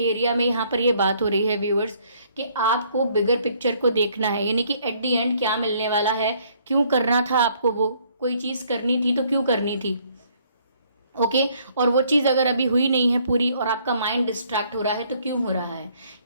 में यहाँ पर ये बात हो रही है व्यूअर्स कि आपको बिगर पिक्चर को देखना है, यानी कि एट दी एंड क्या मिलने वाला है, क्यों करना था आपको, वो कोई चीज़ करनी थी तो क्यों करनी थी। ओके, और वो चीज़ अगर अभी हुई नहीं है पूरी और आपका माइंड डिस्ट्रैक्ट हो रहा है तो क्यों हो रहा है,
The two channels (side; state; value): both; inverted; correlation -0.64